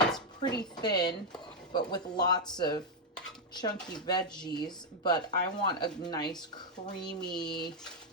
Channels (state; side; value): normal; both; correlation 0.00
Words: it's pretty thin, but with lots of chunky veggies, but I want a nice creamy